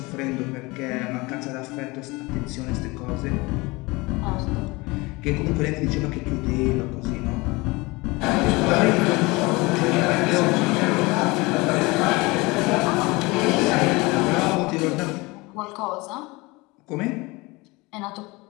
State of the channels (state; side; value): quieter; right; 23.8 dB